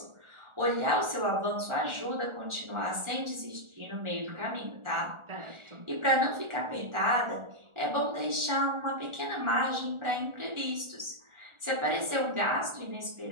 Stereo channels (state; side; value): late; left; 1.4 ms